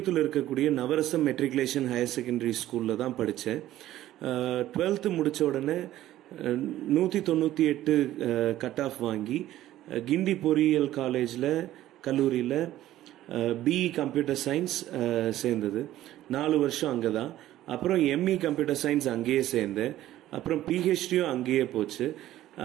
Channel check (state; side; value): quieter; left; 13.9 dB